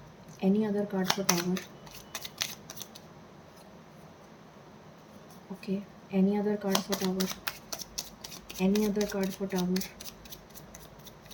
any other card for tower. Okay, any other card for tower, any other card for tower,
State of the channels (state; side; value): identical; both; correlation 1.00